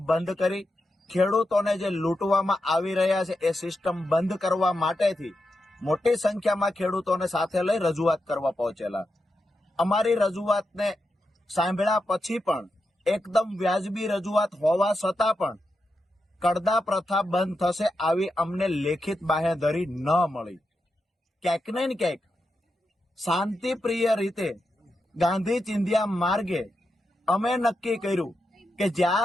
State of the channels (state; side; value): normal; both; correlation 0.87